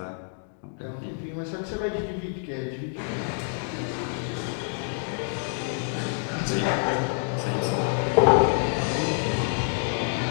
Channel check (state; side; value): silent; right; digital silence